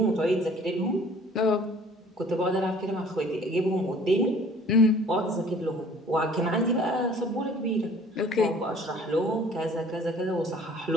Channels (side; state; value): both; normal; correlation 0.53